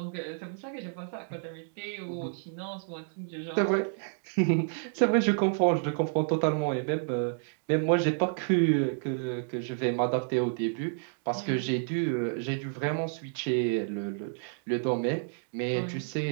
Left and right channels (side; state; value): left; silent; digital silence